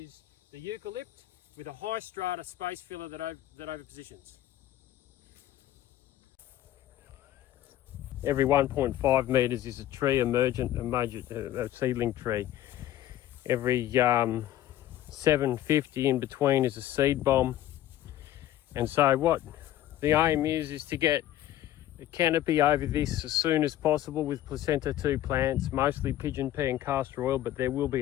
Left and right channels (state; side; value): quieter; right; 13.3 dB